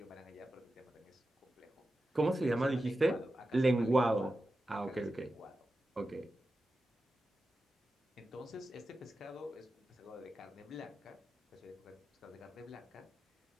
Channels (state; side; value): normal; both; correlation 0.92